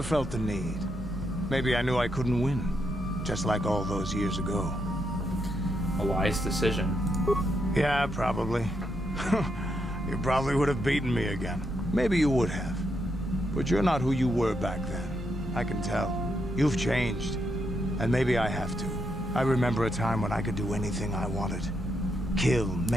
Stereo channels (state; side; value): normal; both; correlation 0.80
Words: felt the need. Maybe I knew I couldn't win. Just like all those years ago. A wise decision. Yeah, probably. You probably would have beaten me again. Maybe you would have. But you're not who you were back then. I can tell. You've changed. And maybe I have to. I remember a time when I could do anything I wanted. Kill,